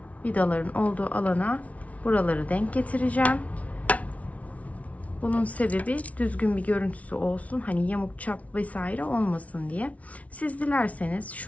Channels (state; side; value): late; right; 0.067 ms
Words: vidaların olduğu alana buraları denk getireceğim. Bunun sebebi düzgün bir görüntüsü olsun. Hani yamuk çap vesaire olmasın diye. Siz dilerseniz